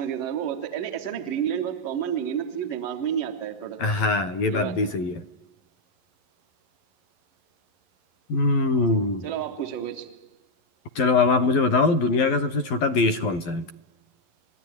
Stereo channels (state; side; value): late; right; 11 ms